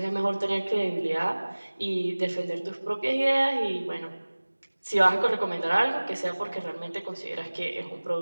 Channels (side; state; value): both; inverted; correlation -1.00